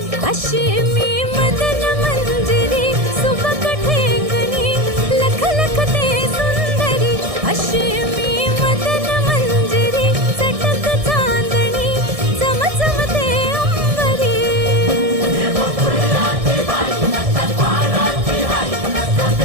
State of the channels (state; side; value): late; left; 1.6 ms